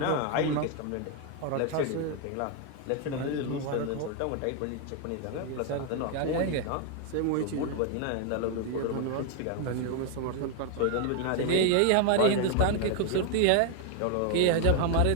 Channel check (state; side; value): different; both; correlation 0.01